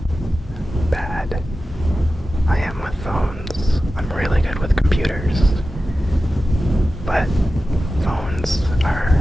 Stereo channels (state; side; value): normal; both; correlation 0.94